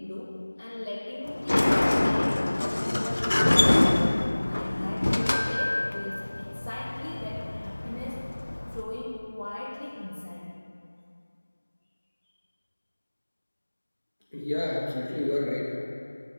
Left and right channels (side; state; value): both; inverted; correlation -1.00